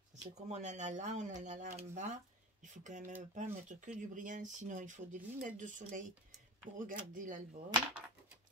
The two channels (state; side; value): normal; both; correlation 0.30